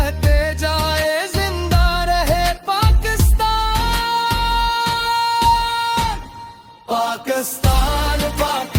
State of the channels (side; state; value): both; identical; correlation 1.00